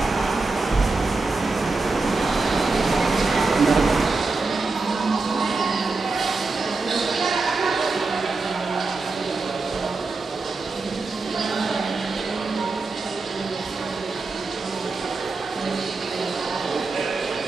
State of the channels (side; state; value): left; quieter; 3.8 dB